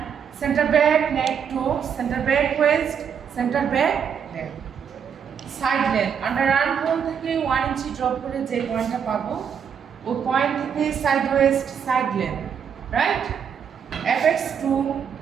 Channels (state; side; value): quieter; left; 7.5 dB